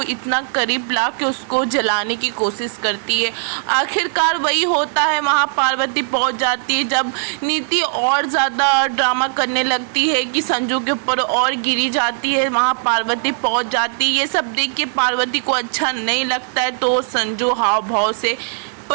इतना करीब ला के उसको जलाने की कोशिश करती है। आखिरकार वही होता है, वहाँ पार्वती पहुँच जाती है। जब नीति और ज़्यादा ड्रामा करने लगती है कि संजू के ऊपर और गिरी जाती है, वहाँ पार्वती पहुँच जाती है। ये सब देख के पार्वती को अच्छा नहीं लगता है, तो संजू हाव भाव से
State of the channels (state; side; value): silent; left; digital silence